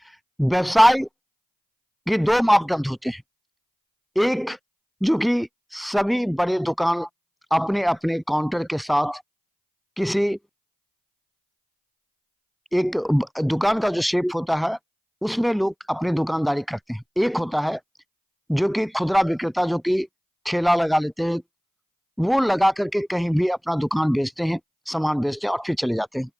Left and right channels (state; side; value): identical; both; correlation 1.00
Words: व्यवसाय के दो मापदंड होते हैं। एक, जो कि सभी बड़े दुकान अपने अपने काउंटर के साथ किसी एक दुकान का जो शेप होता है उसमें लोग अपनी दुकानदारी करते हैं। एक होता है जो कि खुदरा विक्रेता, जो कि ठेला लगा लेते हैं, वो लगा करके कहीं भी अपना दुकान बेचते हैं, सामान बेचते हैं और फिर चले जाते हैं।